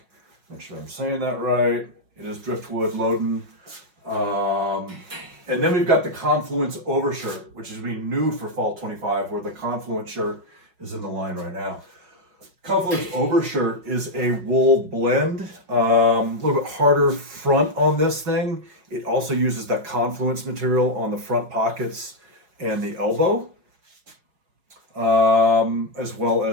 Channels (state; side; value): late; left; 5.5 ms